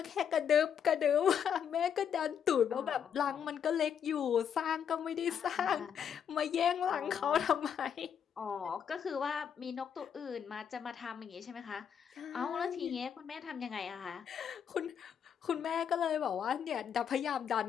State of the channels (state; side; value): quieter; right; 8.1 dB